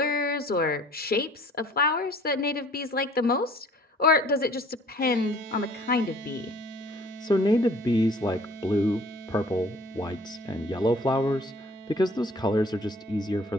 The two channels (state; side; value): normal; both; correlation 0.53